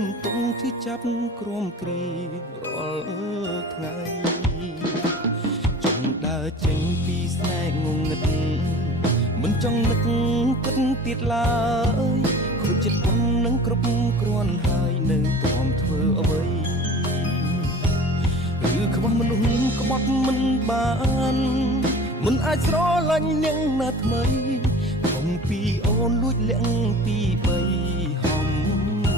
មតុងជាចាប់ក្រមគ្រារាល់ថ្ងៃចង់ដើរចេញពីស្នេហ៍ងងឹតមិនចង់នឹកគិតទៀតឡើយខូចចិត្តខ្ញុំនឹងគ្រប់គ្រាន់ហើយនៅទ្រាំធ្វើអ្វីឬខ្វះមនុស្សក្បត់មិនបានមិនអាចស្រឡាញ់នាងណាថ្មីខំពីអូនលួចលាក់ពីបីហំ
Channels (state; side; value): normal; both; correlation 0.41